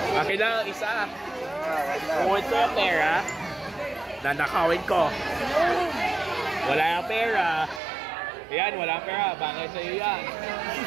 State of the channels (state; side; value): drops out; left; at 7.8 s